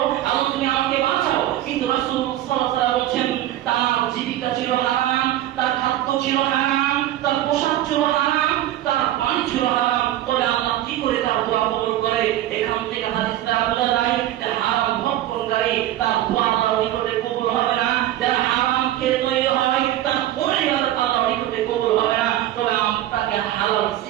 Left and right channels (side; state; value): left; quieter; 13.5 dB